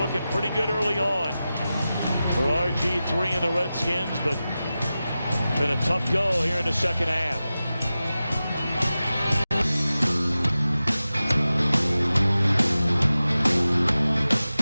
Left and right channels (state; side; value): inverted; both; correlation -0.94